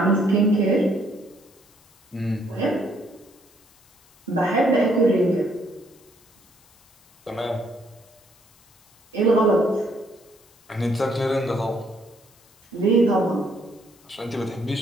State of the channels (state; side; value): noise; left; hiss, 30 dB below the sound